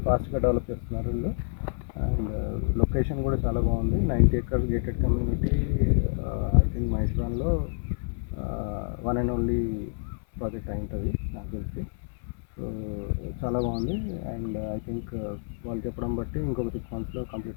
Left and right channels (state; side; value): silent; right; 59 dB below the other